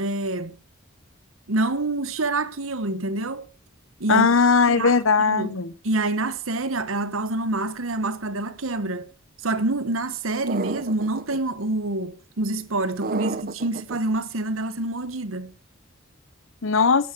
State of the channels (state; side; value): normal; both; correlation 0.00